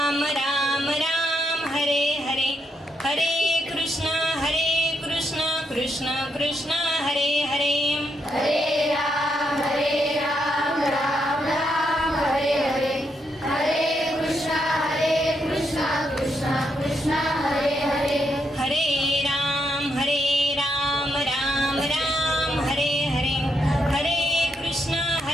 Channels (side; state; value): both; normal; correlation 0.80